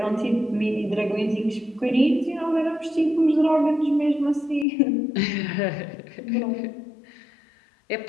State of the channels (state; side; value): drops out; right; at 4.7 s